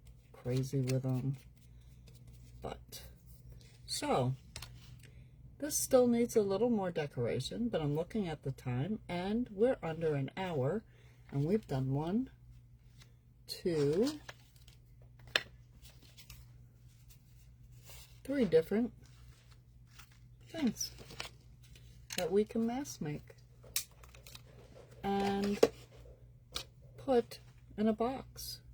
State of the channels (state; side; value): identical; both; correlation 1.00